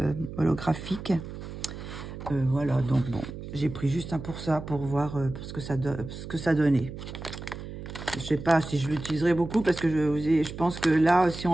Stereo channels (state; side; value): noise; right; hum, 10 dB below the sound